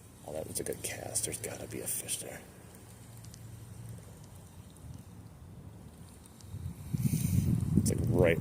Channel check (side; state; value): both; identical; correlation 1.00